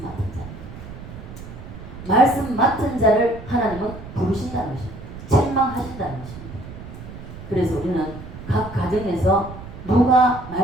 맡은 자. 말씀 맡은 자를 하나님은 부르신다는 것입니다. 책망하신다는 것입니다. 그래서 우리는 각 가정에서 누가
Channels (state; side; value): noise; right; rumble, 13 dB below the sound